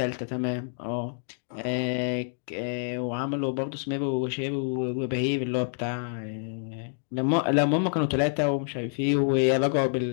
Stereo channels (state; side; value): silent; right; digital silence